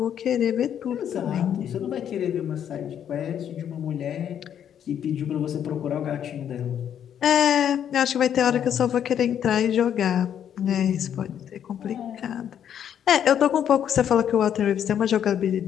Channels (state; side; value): quieter; right; 9.3 dB